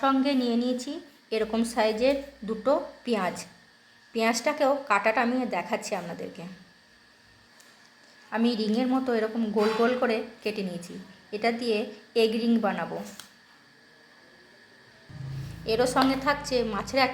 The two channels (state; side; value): identical; both; correlation 1.00